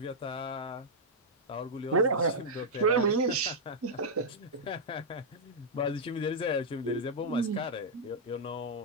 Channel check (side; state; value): both; normal; correlation -0.06